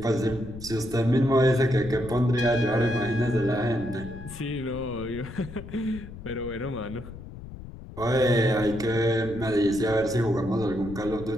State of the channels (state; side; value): noise; left; rumble, 13 dB below the sound